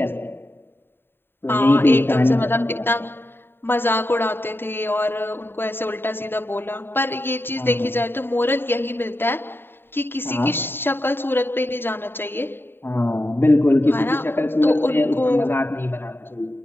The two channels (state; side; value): late; right; 0.10 ms